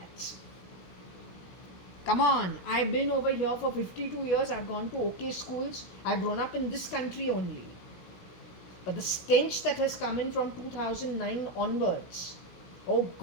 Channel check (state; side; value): late; right; 17 ms